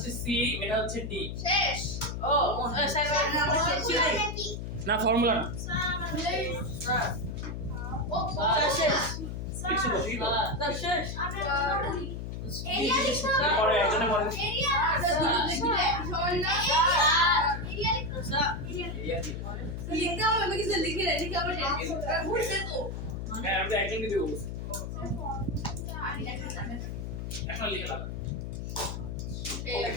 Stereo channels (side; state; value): left; noise; hum, 6 dB below the sound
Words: সি এটা হচ্ছে ডি শেষ ও স্যার আমরা শেষ ছিল না ফর্মুলা না ও শেষ লিখছো তো ঠিক আছে স্যার শেষ এরিয়া লিখতে হবে পরে একজনে পরে এরিয়া এরিয়া লিখতে স্যার লিখতে হবে আমি কিছু লিখে রেখে লিখে আবার ভুলছে তো হ্যাঁ আমি একজনকে দিব এখন লিখে দাও